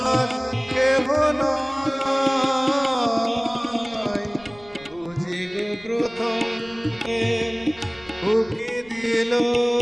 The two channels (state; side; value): noise; right; rumble, 25 dB below the sound